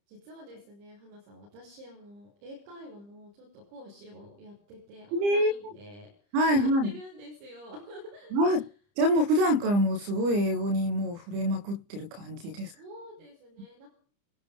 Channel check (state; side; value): late; left; 30 ms